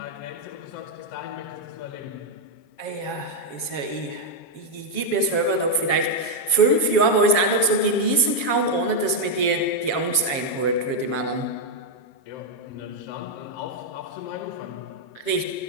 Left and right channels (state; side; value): late; right; 7.3 ms